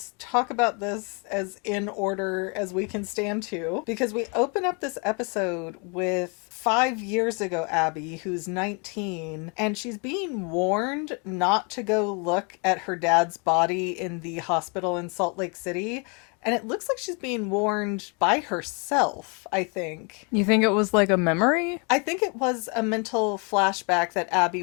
talk about this as in order as we can stand to, because we open up this episode with 5 years ago Abby, who's 19, and she's being warned not to go look at her dad's body in the hospital in Salt Lake City. And it looks like she's being warned by herself, I think. You think it was like a memory? I think it was a mental flashback that Abby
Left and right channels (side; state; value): right; quieter; 34.1 dB